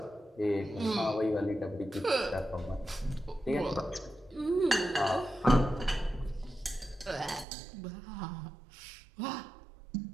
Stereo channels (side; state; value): left; drops out; at 7.5 s